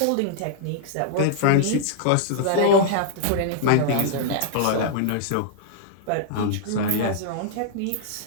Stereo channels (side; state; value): both; different; correlation -0.01